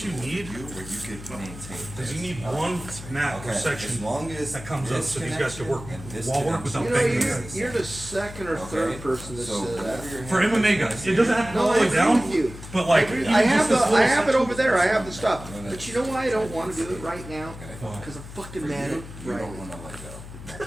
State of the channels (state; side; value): noise; left; hum, 13 dB below the sound